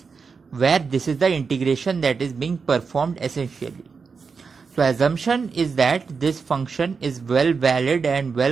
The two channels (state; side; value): quieter; left; 5.2 dB